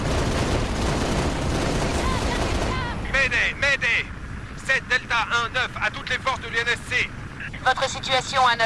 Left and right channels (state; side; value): identical; both; correlation 1.00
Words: Mayday 7 Delta 1-9 à toutes les forces de l'UNSC. Votre situation à